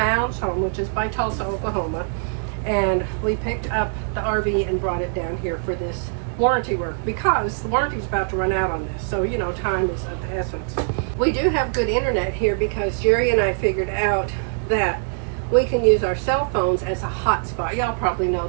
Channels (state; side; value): silent; left; digital silence